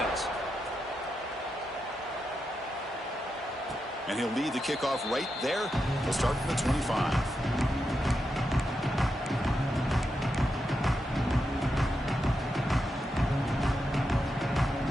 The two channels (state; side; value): normal; both; correlation 0.86